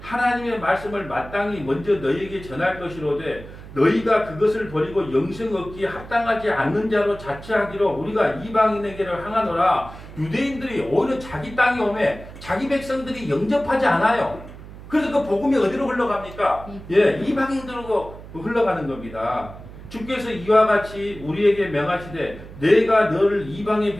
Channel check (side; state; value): right; noise; hum, 15 dB below the sound